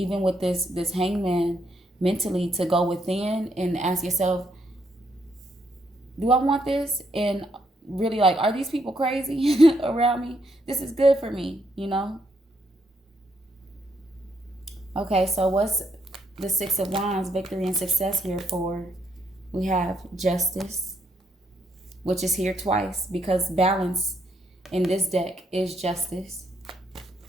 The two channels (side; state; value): both; normal; correlation 0.75